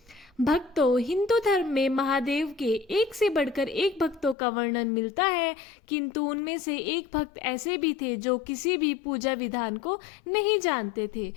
भक्तों, हिंदू धर्म में महादेव के एक से बढ़कर एक भक्तों का वर्णन मिलता है, किंतु उनमें से एक भक्त ऐसे भी थे जो किसी भी पूजा विधान को नहीं जानते थे।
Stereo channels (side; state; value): right; drops out; at 4.4 s